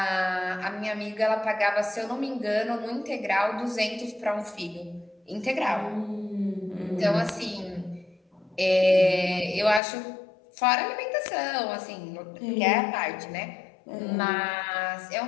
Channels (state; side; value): drops out; right; at 9.8 s